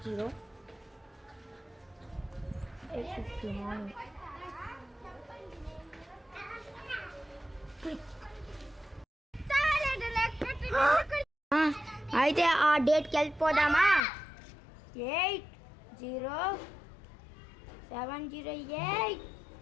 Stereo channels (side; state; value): right; drops out; at 14.0 s